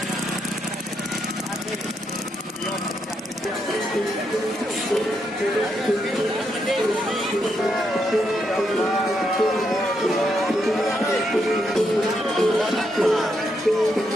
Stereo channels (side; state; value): both; normal; correlation 0.79